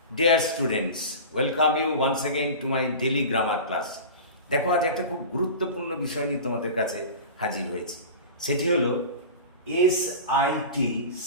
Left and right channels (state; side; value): inverted; both; correlation -0.33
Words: Dear students, welcome you once again to my daily grammar class. দেখো আজ একটা খুব গুরুত্বপূর্ণ বিষয় নিয়ে তোমাদের কাছে হাজির হয়েছি। সেটি হলো এসআইটি